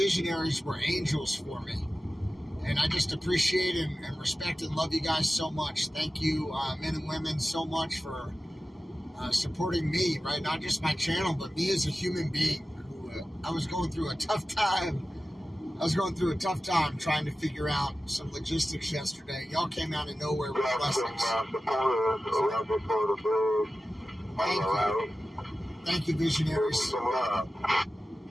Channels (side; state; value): both; normal; correlation 0.95